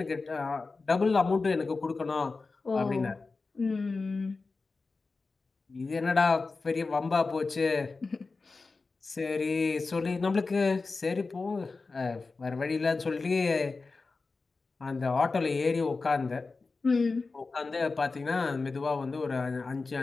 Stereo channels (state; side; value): quieter; right; 4.0 dB